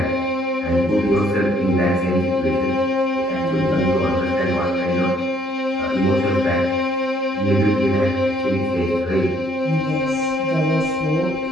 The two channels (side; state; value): both; normal; correlation 0.65